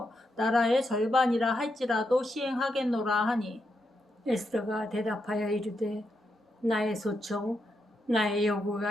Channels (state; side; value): normal; both; correlation 0.83